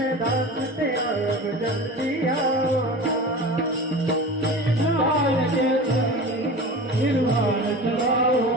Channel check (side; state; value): both; normal; correlation 0.33